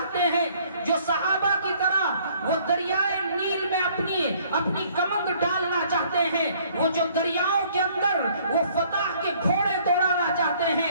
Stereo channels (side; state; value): both; inverted; correlation -0.60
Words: ہیں, جو صحابہ کی طرح وہ دریائے نیل میں اپنی کمند ڈالنا چاہتے ہیں, وہ جو دریاؤں کے اندر وہ فتح کے گھوڑے دوڑانا چاہتے